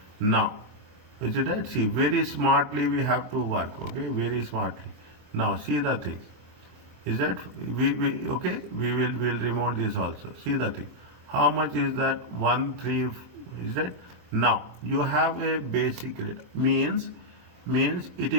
Now, is it right? See, very smartly we have to work. Okay, very smartly. Now, see the thing. Is that we okay? We'll remove this also. See the thing. How much is that? 13. Is that? Now you have a basic rate. Means it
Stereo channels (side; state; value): left; late; 23 ms